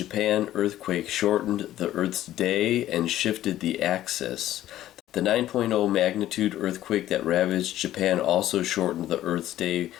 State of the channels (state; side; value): quieter; right; 13.5 dB